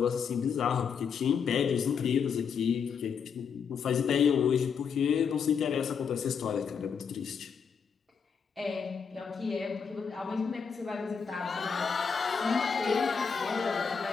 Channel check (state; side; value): quieter; right; 6.4 dB